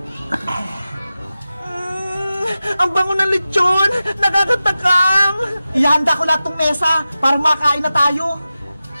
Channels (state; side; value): inverted; both; correlation -0.94